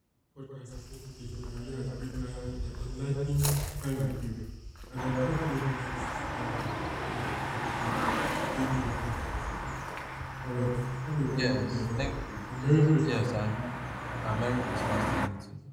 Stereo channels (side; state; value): both; identical; correlation 1.00